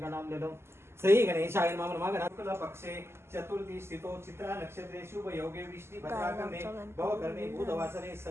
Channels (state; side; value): late; left; 0.12 ms